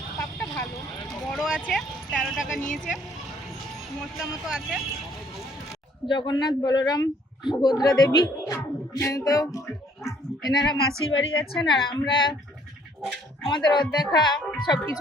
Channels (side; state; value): both; normal; correlation 0.61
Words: পাপটা ভালো, বড় আছে, 13 টাকা নিয়েছে, মশলা মতো আছে। জগন্নাথ, বলরাম, সুভদ্রা দেবী, তো এনারা মাসির বাড়ি যাচ্ছেন, আর আমরা আমাদের রথ দেখা